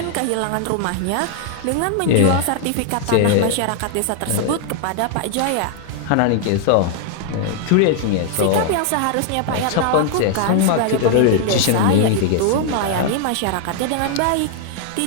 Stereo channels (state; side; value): different; both; correlation 0.00